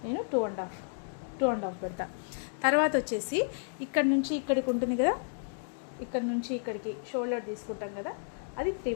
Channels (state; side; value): silent; right; digital silence